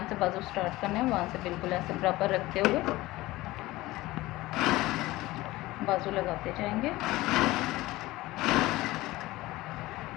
से बाजू स्टार्ट करना है वहाँ से बिल्कुल ऐसे बराबर रखते हुए बाजू लगाते जाएंगे।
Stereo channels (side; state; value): right; quieter; 18.6 dB